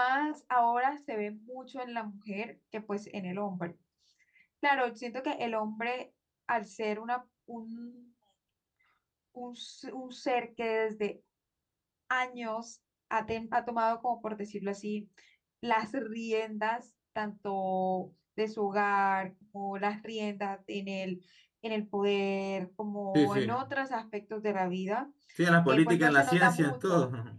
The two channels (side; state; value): both; identical; correlation 1.00